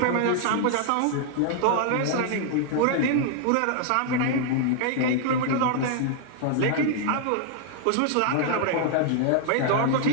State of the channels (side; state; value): both; different; correlation -0.01